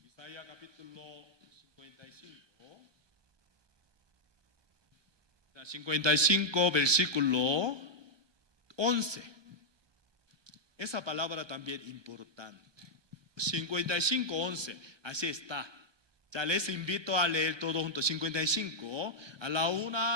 Isaías capítulo 55. 55 versículo 11. Esa palabra también importante. 55, 11. Así está. Ya les invito a leer todo junto. 55. A la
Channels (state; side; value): late; left; 1.2 ms